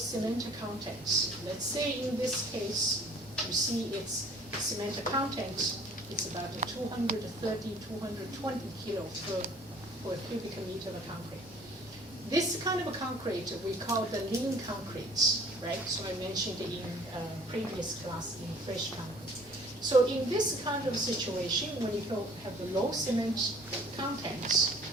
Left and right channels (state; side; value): normal; both; correlation 0.53